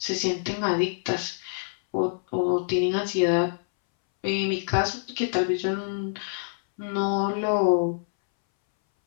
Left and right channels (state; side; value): silent; right; 61 dB below the other